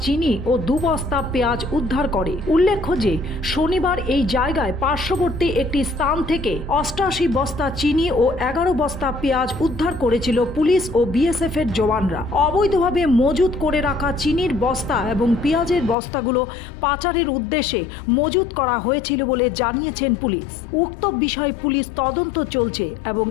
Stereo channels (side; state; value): right; drops out; at 16.0 s